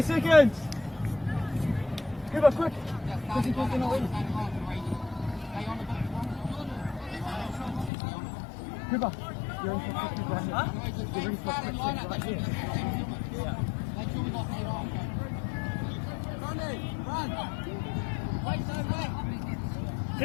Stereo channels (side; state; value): right; drops out; at 7.9 s